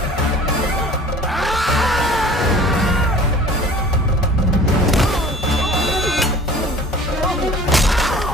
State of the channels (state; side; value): normal; both; correlation 0.46